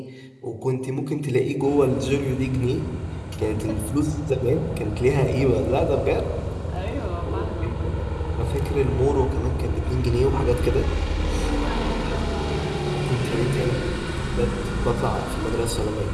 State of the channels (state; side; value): identical; both; correlation 1.00